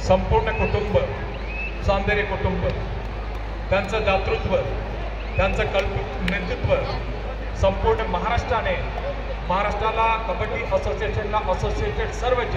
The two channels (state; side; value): identical; both; correlation 1.00